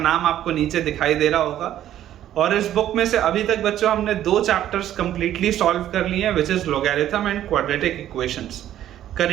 आपको नीचे दिखाई दे रहा होगा। और इस बुक में से अभी तक बच्चों हमने 2 चैप्टर्स कंप्लीटली सॉल्व कर लिए हैं, which is logarithm and quadratic equations.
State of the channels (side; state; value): left; quieter; 11.9 dB